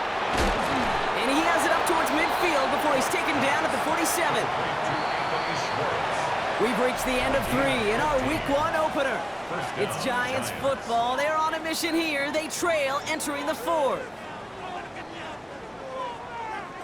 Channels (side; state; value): both; identical; correlation 1.00